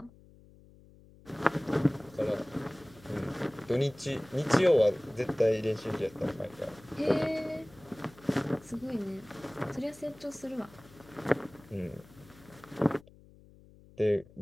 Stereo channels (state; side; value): noise; left; hum, 24 dB below the sound